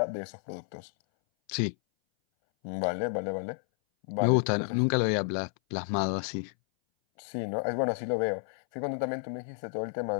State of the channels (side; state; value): right; silent; 57 dB below the other